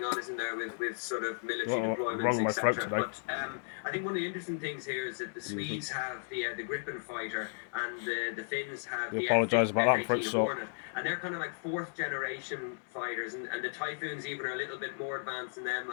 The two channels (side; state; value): right; silent; digital silence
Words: on, isn't there, with sort of military deployments, etc. But I think one of the interesting things here is that the Swedes have the Gripen fighter and the Finns have the F-18 Hornet, and they're kind of like 4th generation fighters, and the Typhoons even are a little bit more advanced than them,